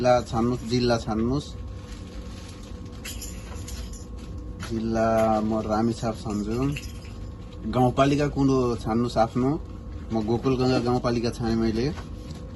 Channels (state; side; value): identical; both; correlation 1.00